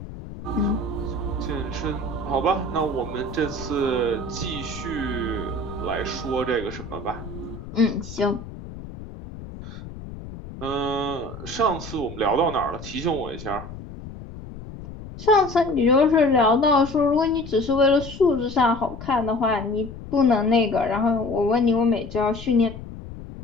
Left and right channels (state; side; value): noise; left; rumble, 12 dB below the sound